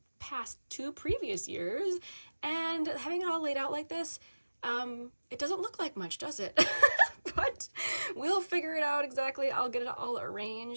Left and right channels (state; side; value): inverted; both; correlation -1.00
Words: past 2 previous years, and having it all laid out like this, it doesn't look like much, does it? But we'll figure it out exactly. I'll get it all